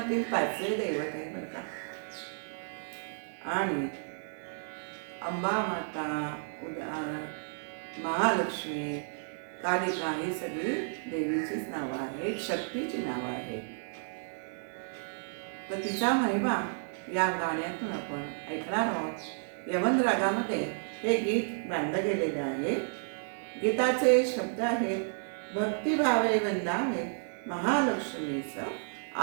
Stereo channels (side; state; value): left; silent; digital silence